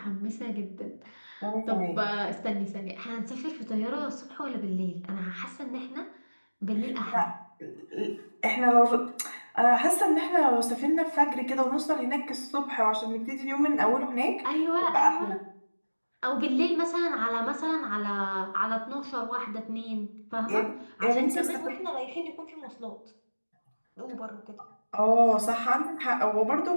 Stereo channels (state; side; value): inverted; both; correlation -1.00